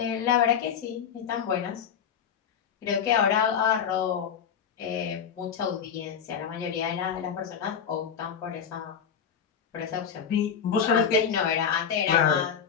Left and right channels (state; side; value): quieter; right; 7.6 dB